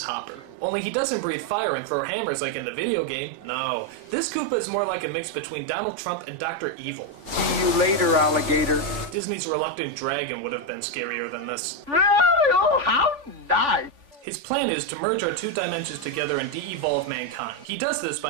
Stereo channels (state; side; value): late; left; 3.5 ms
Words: Hopper. Only he doesn't breathe fire and throw hammers like in the video game. No, this Koopa is more like a mix between Donald Trump and Dr. Evil. See you later, alligator. Disney's Reluctant Dragon would have been scarier than this. Oh, how nice! His plan is to merge our 2 dimensions together and de-evolve mankind. He does this